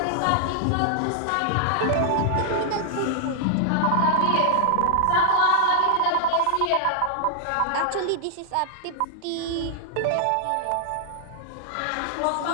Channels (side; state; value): both; different; correlation -0.01